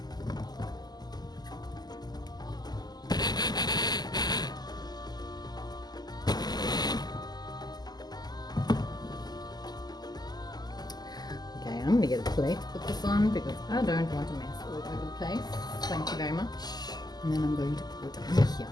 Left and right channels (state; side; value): late; right; 0.20 ms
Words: get a plate to put this on because I don't want to mess all over the place. Thank you very much. And then I'm going to put it in here